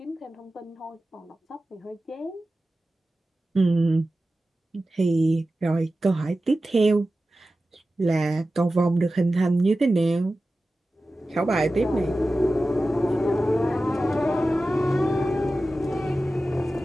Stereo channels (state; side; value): normal; both; correlation 0.94